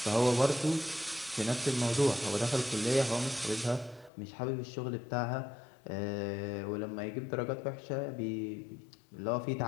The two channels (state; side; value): drops out; right; at 4.1 s